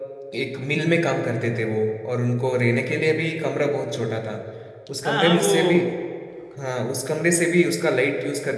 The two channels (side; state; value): both; identical; correlation 1.00